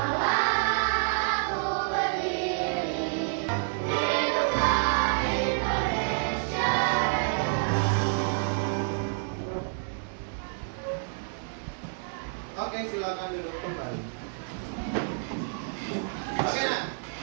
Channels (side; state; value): left; silent; digital silence